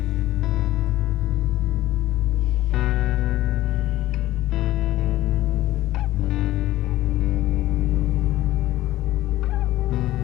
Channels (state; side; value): quieter; right; 15.4 dB